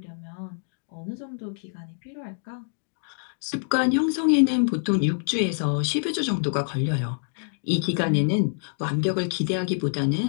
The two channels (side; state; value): right; silent; digital silence